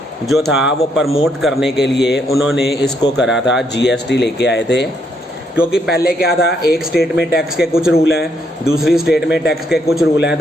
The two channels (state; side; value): normal; both; correlation 0.74